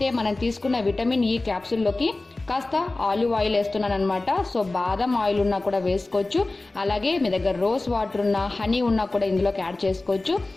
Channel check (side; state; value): right; quieter; 3.0 dB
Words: మనం తీసుకున్న విటమిన్ ఈ క్యాప్సూల్లోకి కాస్త ఆలివ్ ఆయిల్ వేస్తున్నాను అనమాట. సో బాదం ఆయిల్ ఉన్నా కూడా వేసుకోవచ్చు. అలాగే మీ దగ్గర రోజ్ వాటర్ ఉన్నా, హనీ ఉన్నా కూడా ఇందులోకి యాడ్ చేసుకోవచ్చు.